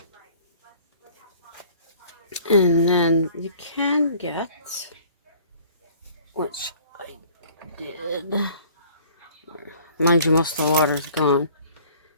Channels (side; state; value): both; inverted; correlation -0.53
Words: And then you can get, which I did. Mind you, most of the water's gone.